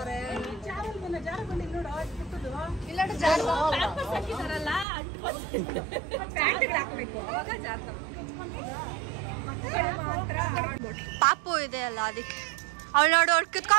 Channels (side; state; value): left; drops out; at 4.9 s